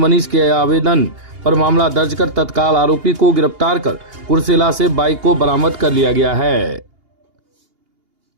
के आवेदन पर मामला दर्ज कर तत्काल आरोपी को गिरफ्तार कर कुर्सेला से बाइक को बरामद कर लिया गया है।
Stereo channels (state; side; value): late; left; 2.8 ms